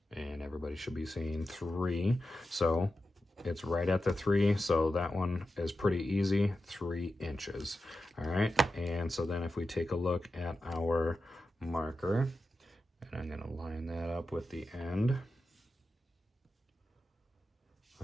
and everybody should be seeing 3. So it's right at the 3. So that one is pretty easy, 3 inches. All right. And so then if we take a look at our marker, and I'm going to line that up with the end.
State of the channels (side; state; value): both; normal; correlation 0.91